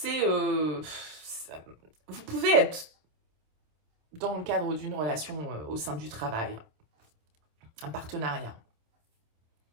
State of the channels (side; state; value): left; late; 26 ms